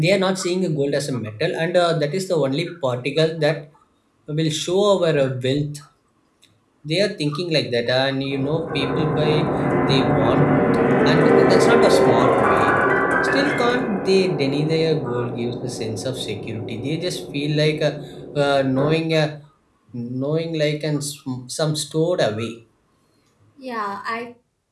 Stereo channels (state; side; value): identical; both; correlation 1.00